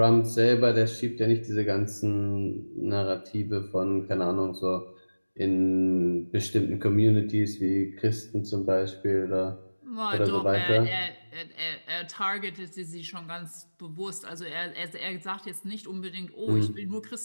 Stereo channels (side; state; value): both; inverted; correlation -1.00